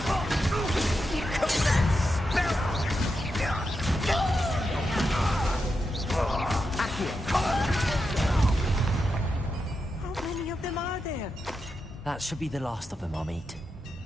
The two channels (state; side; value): normal; both; correlation 0.87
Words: You call that How many of them are there? That should be the last of them, Amit.